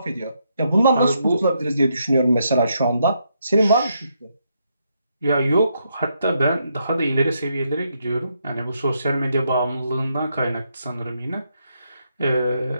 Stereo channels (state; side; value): inverted; both; correlation -0.78